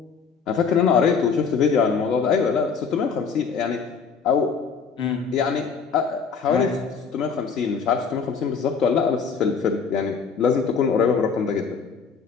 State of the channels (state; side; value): quieter; right; 5.8 dB